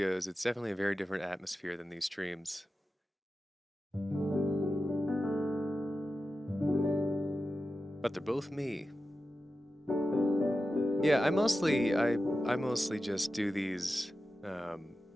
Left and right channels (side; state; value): both; normal; correlation 0.92